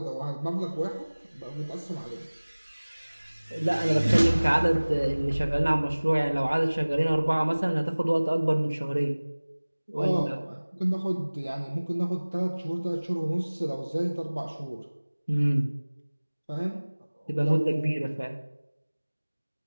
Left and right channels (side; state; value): both; inverted; correlation -1.00